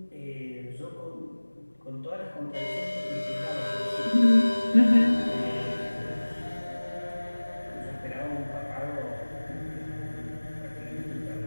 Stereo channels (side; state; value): both; inverted; correlation -1.00